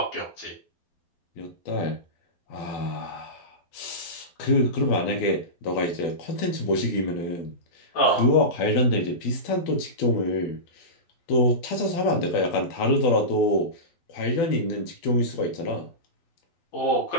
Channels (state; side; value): late; right; 12 ms